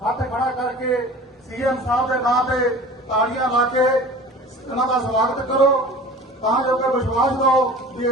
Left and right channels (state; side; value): normal; both; correlation 0.41